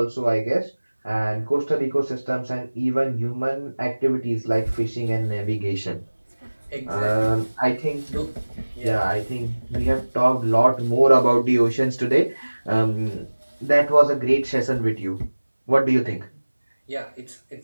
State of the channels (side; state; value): both; inverted; correlation -1.00